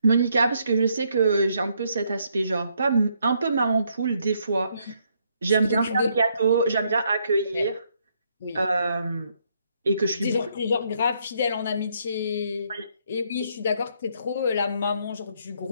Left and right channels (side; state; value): both; inverted; correlation -0.73